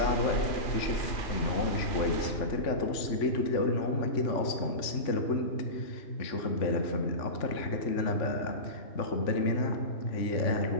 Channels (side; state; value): right; late; 3.5 ms